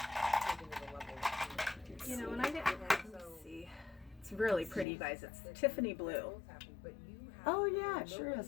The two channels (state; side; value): drops out; right; at 4.9 s